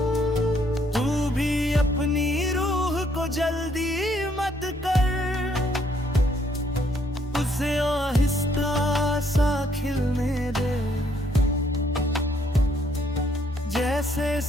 तू भी अपनी रूह को जल्दी मत कर, उसे आहिस्ता सा खिलने दे, जैसे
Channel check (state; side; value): normal; both; correlation 0.69